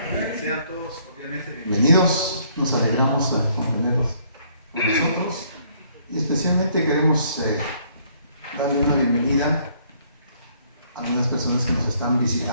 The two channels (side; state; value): both; inverted; correlation -0.65